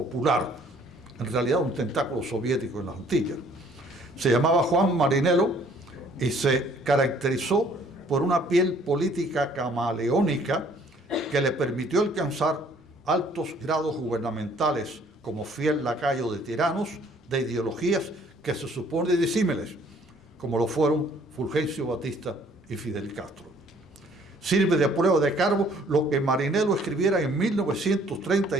en realidad un tentáculo soviético en las Antillas. Se llamaba Juan Marinello y se caracterizó por una piel política camaleónica que le permitió alcanzar altos grados gubernamentales como fiel lacayo de tiranos de ideologías que se supone disímiles, como lo fueron Fulgencio Batista y Fidel Castro. Sirve de prueba de cargo lo que Marinello escribiera en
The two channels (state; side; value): normal; both; correlation 0.59